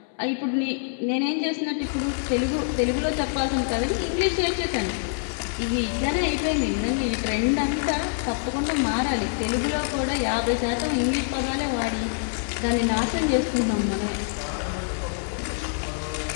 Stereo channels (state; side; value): silent; right; 61 dB below the other